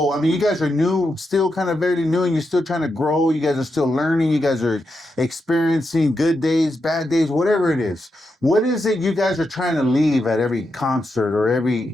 I mean, you guys are new, still kind of very new, and you're still trying to grow. You guys are still learning. You guys are experiencing good days, bad days, whatever it is. What is it you guys are trying to leave at every concert or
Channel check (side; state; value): both; normal; correlation 0.85